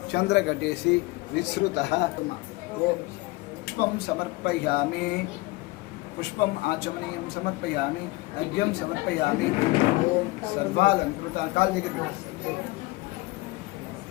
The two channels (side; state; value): right; quieter; 22.0 dB